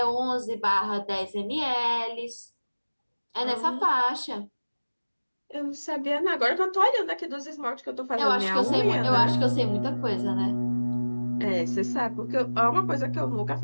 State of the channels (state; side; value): inverted; both; correlation -1.00